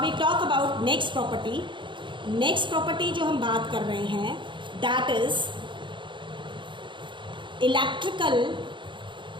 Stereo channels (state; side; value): late; left; 0.23 ms